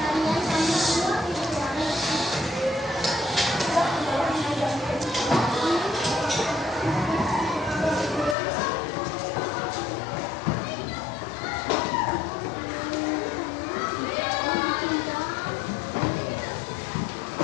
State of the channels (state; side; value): drops out; right; at 8.3 s